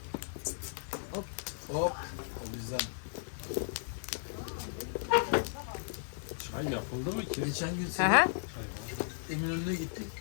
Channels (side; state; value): right; silent; 54 dB below the other